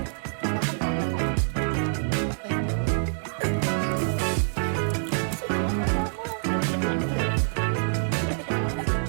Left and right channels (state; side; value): silent; left; digital silence